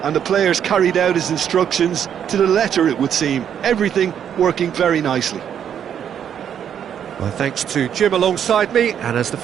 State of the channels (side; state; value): left; quieter; 8.9 dB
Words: and the players carried out his instructions to the letter, it would seem. Everything working very nicely. Well, thanks to Jim alongside me, and as the